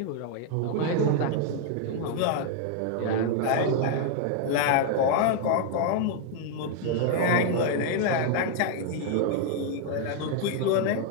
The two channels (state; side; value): different; both; correlation 0.00